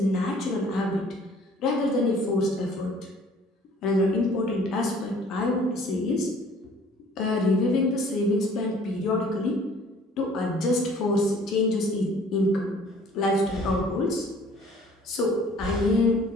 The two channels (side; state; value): both; normal; correlation 0.54